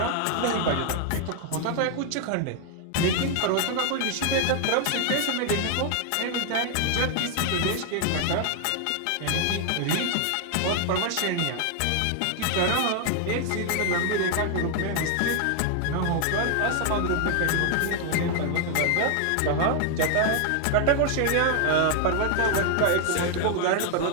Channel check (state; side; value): different; both; correlation 0.00